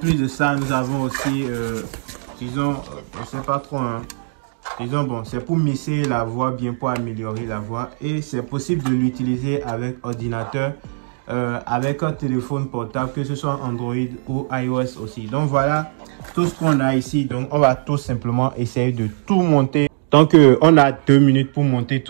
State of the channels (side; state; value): left; silent; digital silence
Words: de ça, nous avons aussi, disons, je sais pas trop, hein. Disons, bon, c'est pour mixer la voix bien, pour améliorer la voix. Et c'est possible de l'utiliser avec ordinateur, avec un téléphone portable, que ce soit Android ou iOS aussi. Donc voilà tout ce qu'on a ici. Donc on va tout simplement essayer de tout monter. Donc on a 2 minutes pour monter